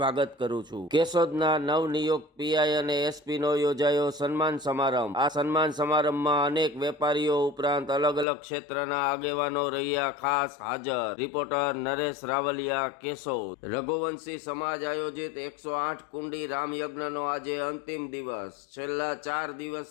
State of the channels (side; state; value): right; drops out; at 8.2 s